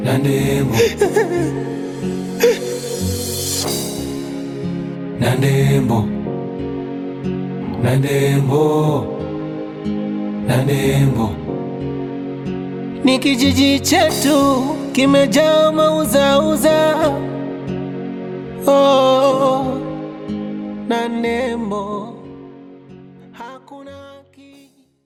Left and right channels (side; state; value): both; identical; correlation 1.00